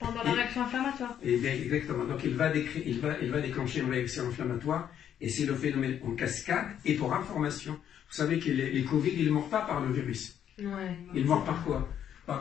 Pendant la réaction inflammatoire. Et bien, exactement. Donc, il va déclencher une réaction inflammatoire. Et c'est le phénomène en cascade. Et pour information, vous savez que les Covid, ils ne meurent pas par le virus. Ouais. Ils meurent par quoi?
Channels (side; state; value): right; quieter; 9.6 dB